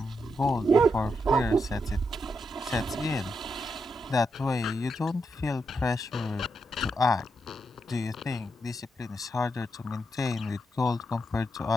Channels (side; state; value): both; normal; correlation 0.83